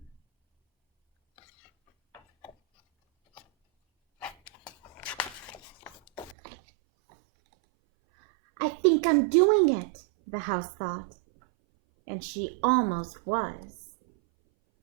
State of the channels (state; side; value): drops out; left; at 6.4 s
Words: I think I'm doing it, the house thought, and she almost was.